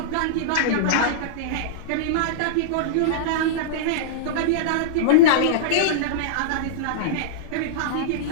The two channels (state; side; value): different; both; correlation -0.03